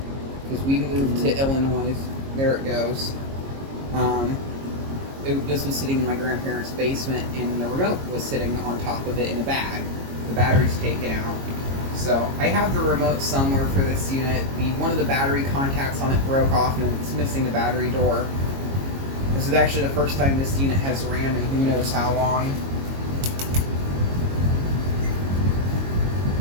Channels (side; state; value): left; late; 22 ms